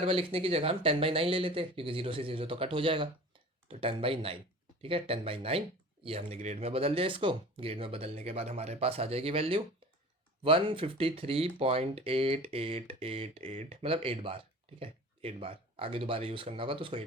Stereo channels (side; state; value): both; normal; correlation 0.40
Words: बार लिखने की जगह हम 10/9 ले लेते हैं, क्योंकि 0 से 0 तो कट हो जाएगा, तो 10/9। ठीक है, 10/9 ये हमने ग्रेड में बदल दिया। इसको ग्रेड में बदलने के बाद हमारे पास आ जाएगी वैल्यू 153.8888, मतलब 8 बार। ठीक है, 8 बार। आगे दोबारा यूज़ करना होगा तो उसको